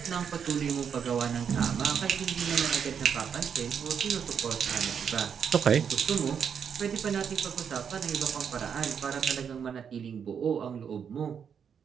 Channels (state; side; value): quieter; left; 7.4 dB